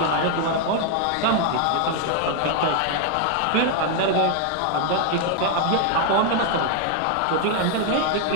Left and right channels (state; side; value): different; both; correlation 0.00